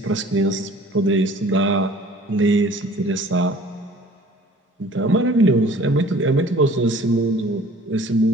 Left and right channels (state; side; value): normal; both; correlation 0.49